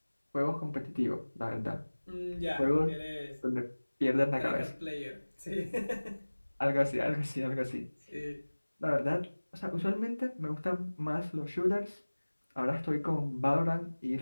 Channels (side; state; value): both; inverted; correlation -1.00